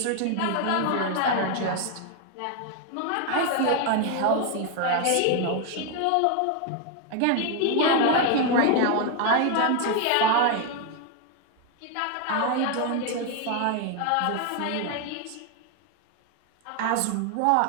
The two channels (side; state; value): both; different; correlation 0.01